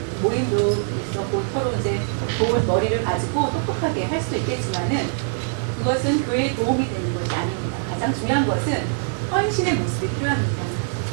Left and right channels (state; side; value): silent; left; 63 dB below the other